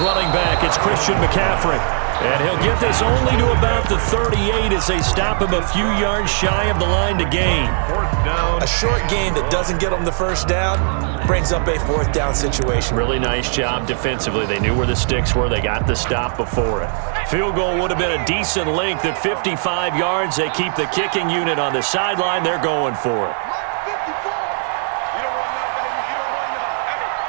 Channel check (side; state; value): left; silent; 67 dB below the other